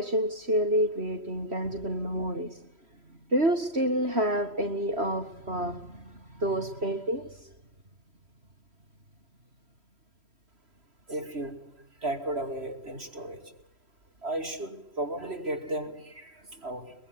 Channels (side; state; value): left; late; 3.1 ms